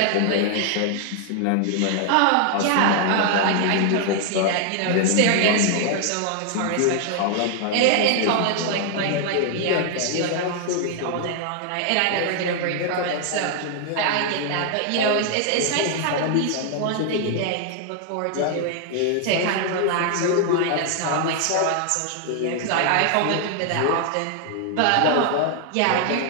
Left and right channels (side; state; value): both; different; correlation 0.00